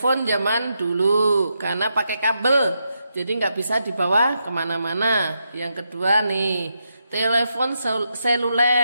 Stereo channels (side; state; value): both; inverted; correlation -0.83